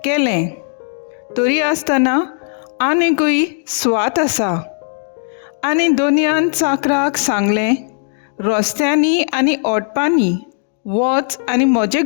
केलें. तरी आसतना आनिकूय स्वात आसा. आनी दोनयान चाकराक सांगलें, रस्त्यांनी आनी ओटपांनी वच आनी म्हजें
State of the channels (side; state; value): right; silent; 68 dB below the other